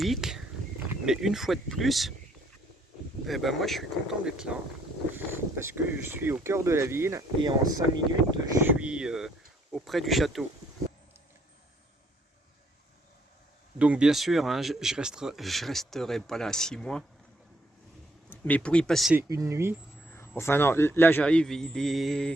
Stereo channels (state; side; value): normal; both; correlation 0.68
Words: mais une fois de plus, moi je suis content d'être là parce que je suis au cœur de la ville et en 5 minutes je suis auprès du château. Donc bien sûr, hein, je resterai pas là 6 mois, mais pour y passer une nuit, enfin non, là j'arrive, il